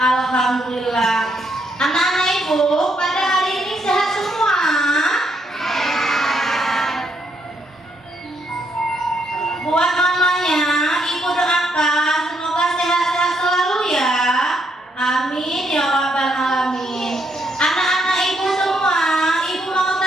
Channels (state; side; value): normal; both; correlation 0.75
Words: Anak-anak ibu pada hari ini sehat semua? Buat mamanya, ibu doakan semoga sehat-sehat selalu ya. Amin ya rabbal alamin. Anak-anak ibu semua, ibu mau